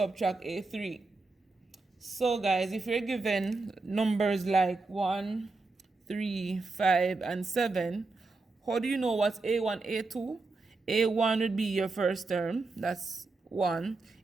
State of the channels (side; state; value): left; quieter; 3.6 dB